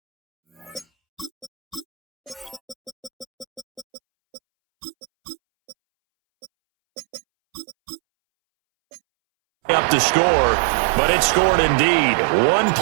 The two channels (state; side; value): drops out; left; at 3.9 s